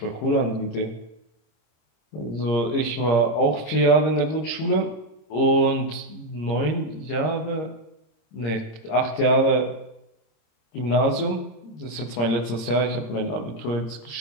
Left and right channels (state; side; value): late; right; 26 ms